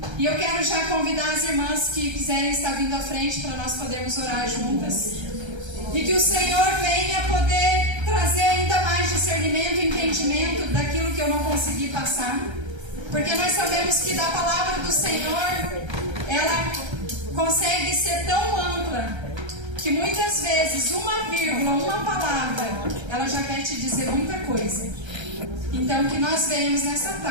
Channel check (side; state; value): left; late; 1.3 ms